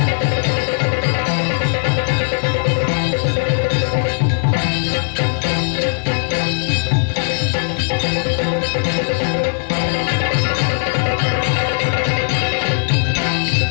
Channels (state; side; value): silent; right; digital silence